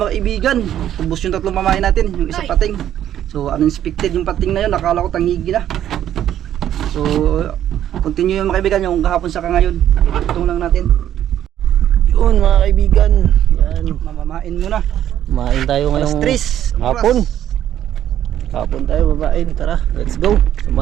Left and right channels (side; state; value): left; quieter; 11.1 dB